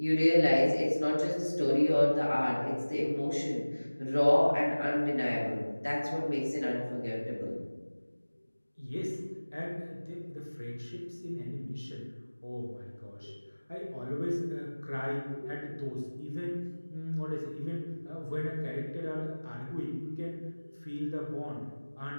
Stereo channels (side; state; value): both; inverted; correlation -1.00